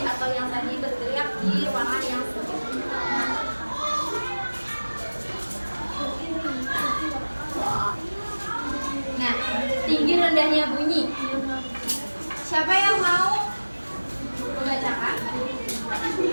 atau yang tadi berteriak di ruangan yang sempit. tinggi rendahnya bunyi. Siapa yang mau membacakan?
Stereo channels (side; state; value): both; inverted; correlation -1.00